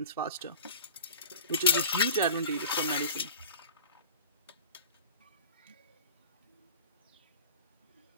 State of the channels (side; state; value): both; inverted; correlation -0.39